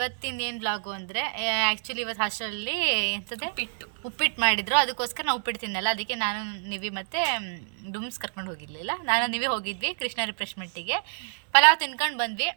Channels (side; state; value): left; silent; 60 dB below the other